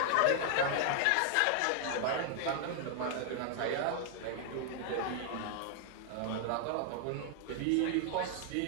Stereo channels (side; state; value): both; different; correlation 0.00